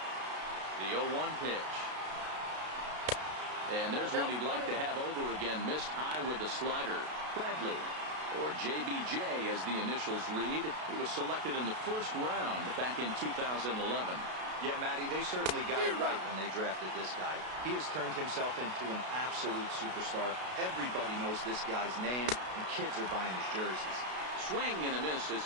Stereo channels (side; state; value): left; late; 32 ms